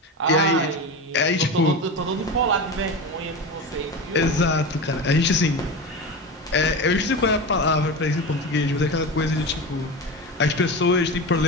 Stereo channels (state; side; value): normal; both; correlation 0.24